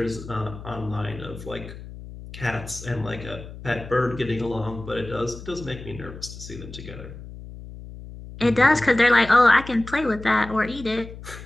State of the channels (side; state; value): left; noise; hum, 14 dB below the sound